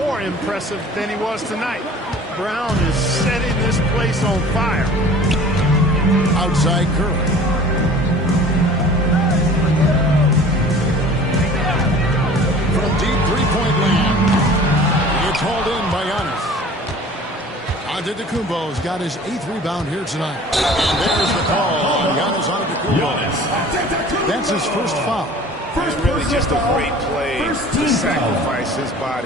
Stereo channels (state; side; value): normal; both; correlation 0.46